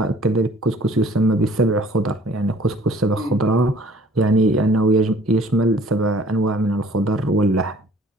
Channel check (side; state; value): both; normal; correlation 0.54